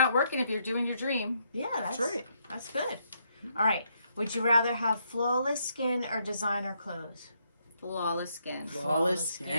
working if you're doing your dream. Yeah, that's right. That's good. All right. Would you rather have flawless skin or designer clothes? Flawless skin. Flawless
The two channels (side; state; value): both; inverted; correlation -0.75